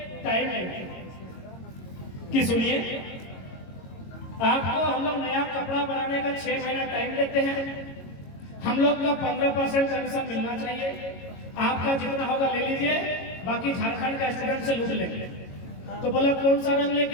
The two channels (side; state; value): right; late; 22 ms